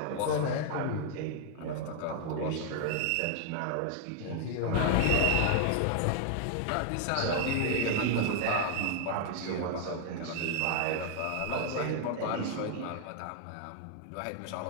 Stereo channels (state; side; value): different; both; correlation 0.00